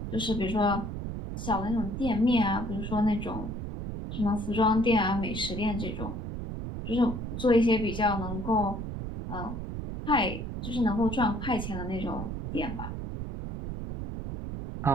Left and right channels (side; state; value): right; noise; rumble, 5 dB below the sound